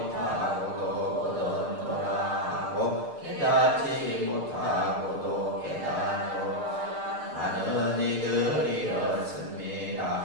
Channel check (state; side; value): late; left; 6.6 ms